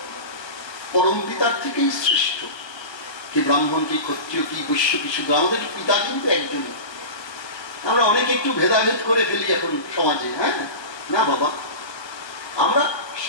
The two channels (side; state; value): right; late; 1.3 ms